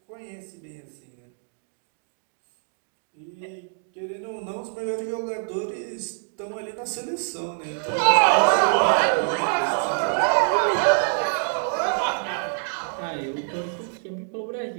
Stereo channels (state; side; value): silent; left; 61 dB below the other